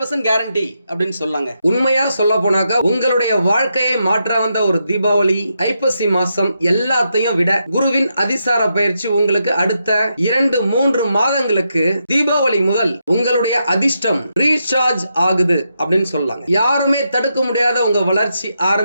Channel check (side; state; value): both; inverted; correlation -0.83